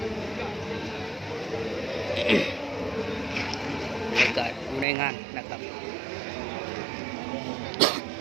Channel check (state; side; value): drops out; left; at 4.9 s